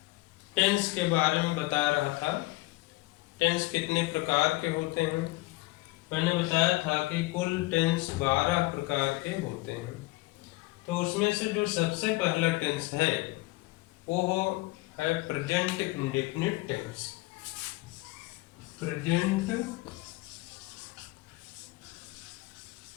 टेंस के बारे में बता रहा था। टेंस कितने प्रकार के होते हैं। मैंने बताया था कि कुल टेंस 12 प्रकार के होते हैं। तो उसमें से जो सबसे पहला टेंस है वो है present indefinite tense. Present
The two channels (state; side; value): quieter; right; 21.1 dB